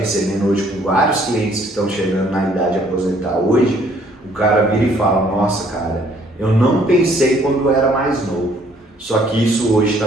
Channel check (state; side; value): normal; both; correlation 0.62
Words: hoje com vários clientes que estão chegando na idade de aposentar hoje, o cara vira e fala, nossa cara, eu não pensei quando eu era mais novo, só que isso hoje está